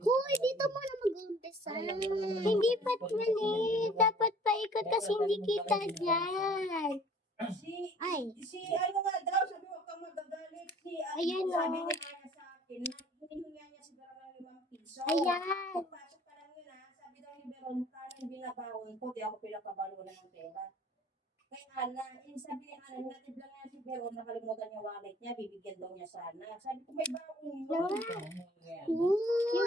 Hoy, dito mo na mag-umpisa. Hindi pat mali. Dapat paikot kasi hindi kita dyan. Si ano nga daw, sabi mo kang magagalit. Ayan, sabi oh. ni Aya sa akin, hinihinga niya si Veron ng 5 piso. Ayan. Pagpasok pa lang yun sabi daw ni Veron, tanong binabawon ko, di ako pinapabalo na ng pera. Kay Ana, sabi ni Ana, natid lang niya si Veron, nakalimutan yung wallet niya, bibigyan daw niya sana. Sabi ko, may baon yun.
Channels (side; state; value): both; normal; correlation 0.53